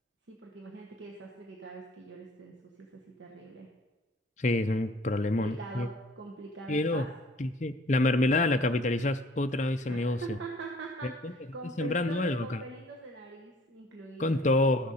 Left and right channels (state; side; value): normal; both; correlation 0.53